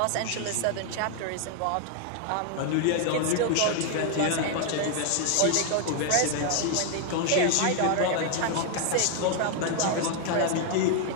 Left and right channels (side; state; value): both; different; correlation 0.00